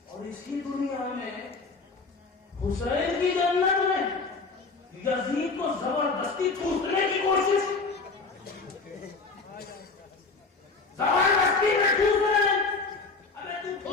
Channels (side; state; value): right; quieter; 4.0 dB